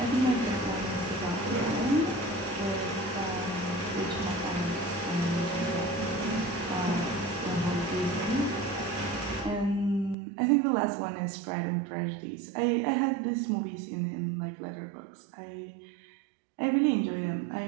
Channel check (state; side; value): drops out; left; at 10.2 s